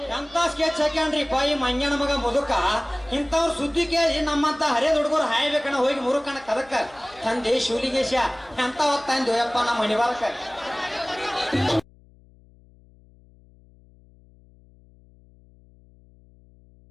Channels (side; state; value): left; noise; hum, 27 dB below the sound